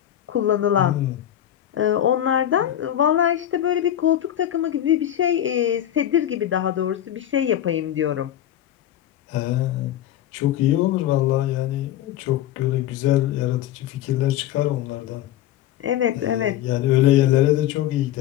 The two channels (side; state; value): right; quieter; 11.8 dB